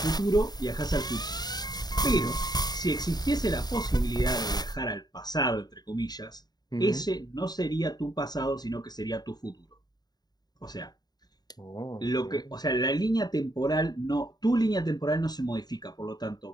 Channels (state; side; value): late; right; 0.20 ms